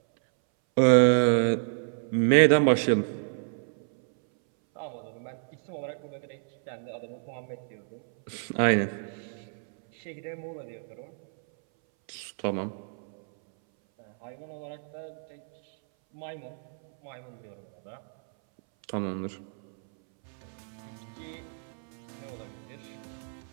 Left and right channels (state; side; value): silent; left; 58 dB below the other